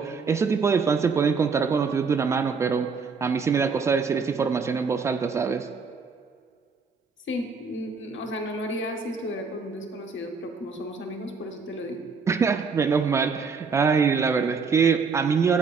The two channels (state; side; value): quieter; left; 5.1 dB